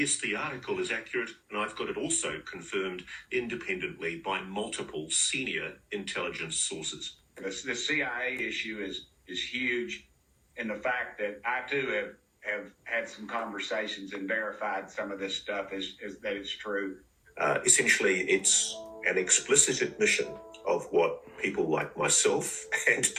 the article is accurate, and I've got it also confirmed independently by multiple senior intelligence sources. The CIA issue is huge, and the fact that I too have had some conversations and verified some of this stuff is that it's true. Essentially, it's an explicit admission of what people like myself and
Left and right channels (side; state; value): both; identical; correlation 1.00